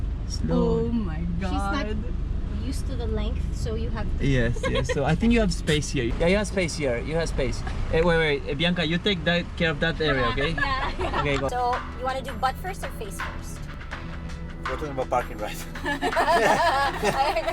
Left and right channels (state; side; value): identical; both; correlation 1.00